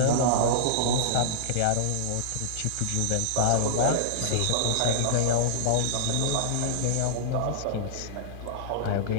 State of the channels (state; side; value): different; both; correlation -0.02